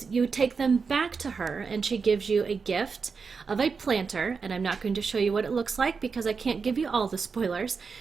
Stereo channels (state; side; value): quieter; left; 5.2 dB